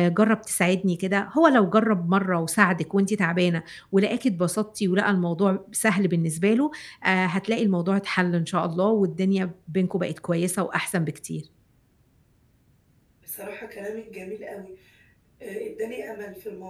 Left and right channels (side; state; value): both; identical; correlation 1.00